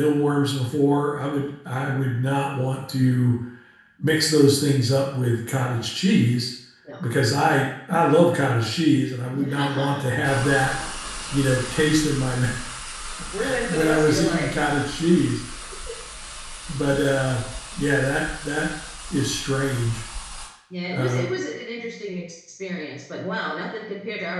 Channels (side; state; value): both; identical; correlation 1.00